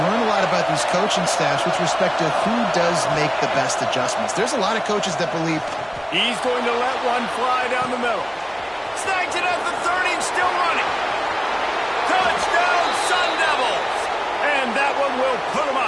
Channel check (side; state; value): both; identical; correlation 1.00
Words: learn a lot about these coaching staffs with respect to who does make the best adjustments. There's a lot of coaches that believe he's going to let one fly down the middle. Snags it at the 30 and still running. Touchdown, Sun Devils! And that one will put them